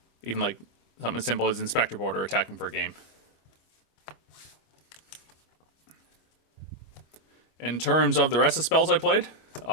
even like something as simple as Inspector Board or attacking for a game. In terms of the rest of the spells I played,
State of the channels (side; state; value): right; late; 25 ms